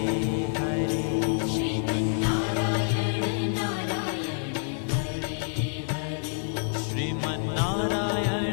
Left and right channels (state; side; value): silent; right; digital silence